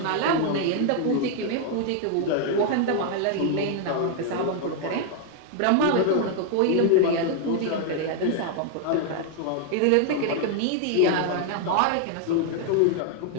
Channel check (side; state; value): both; different; correlation 0.00